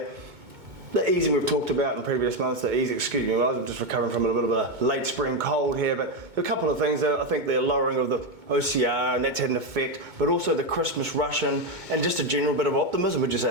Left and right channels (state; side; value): late; left; 2.2 ms